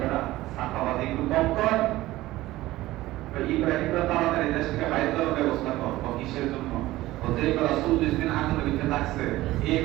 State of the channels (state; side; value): quieter; left; 17.1 dB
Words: সাফাবাদী একটু কম কর, ইব্রাহিম তাড়াতাড়ি দেশ থেকে বাইরে যাওয়ার ব্যবস্থা কর। কিসের জন্য? যে বেলা 40 দিন আগুনের ভিতরে থাকছে, এই